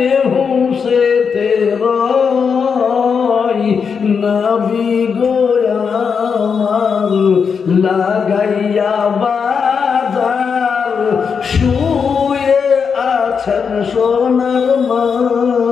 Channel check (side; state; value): right; quieter; 6.1 dB